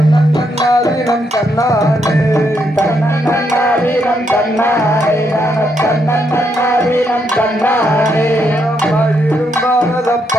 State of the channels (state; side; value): normal; both; correlation 0.77